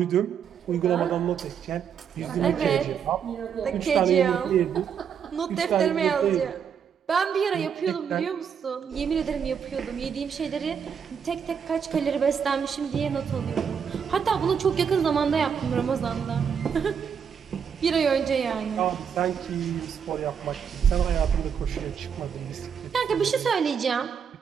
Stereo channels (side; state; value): left; quieter; 7.3 dB